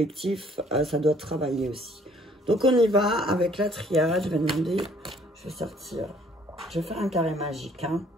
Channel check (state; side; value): normal; both; correlation 0.60